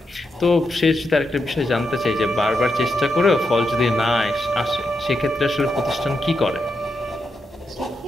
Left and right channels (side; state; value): both; normal; correlation 0.84